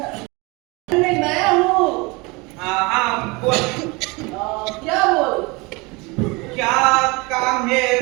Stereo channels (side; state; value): left; quieter; 26.2 dB